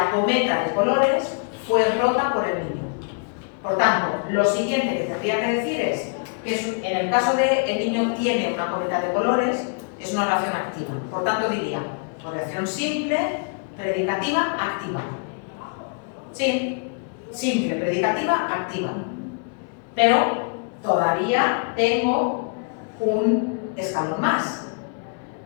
cometa de colores fue rota por el niño. Por tanto, lo siguiente que tendría que decir es que en el caso de el niño tiene una cometa de colores, es una oración activa. Por tanto, diría oración simple, predicativa, activa. Sí, simple, predicativa, activa. Pero todavía tengo un escalón más.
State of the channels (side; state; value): right; quieter; 39.2 dB